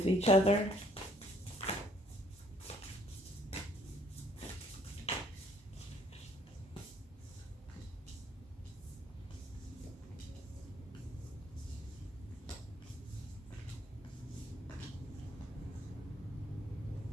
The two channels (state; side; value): normal; both; correlation 0.63